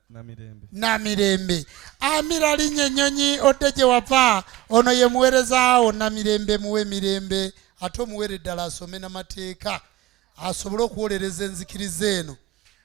Namirembe. Amira linnya ennyonyi odde gye wava. Ono ye muweerezaawo Namirembe muwe emirembe ate omuweere ddala asome n'amateeka asobole okuwolereza enzikiriza eno.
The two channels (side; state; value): left; quieter; 16.2 dB